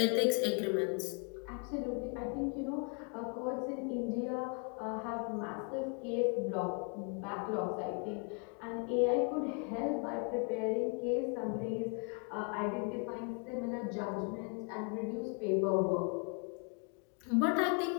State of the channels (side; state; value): right; quieter; 39.1 dB